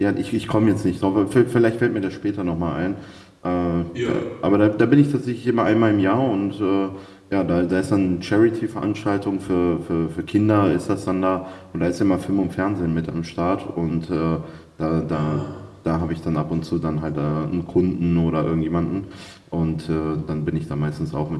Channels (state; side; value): identical; both; correlation 1.00